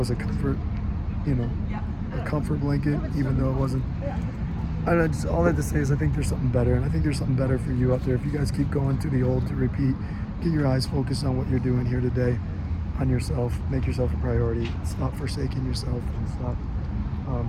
a comfort, a comfort blanket, even though it wasn't. All I have to say is I think there's something better, and I think there's something better for you out there. If you guys keep going to the old to repeat, get your eyes focused on what you're doing here today, on yourself, make yourself a priority, stop forsaking yourself, and stop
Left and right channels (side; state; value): both; identical; correlation 1.00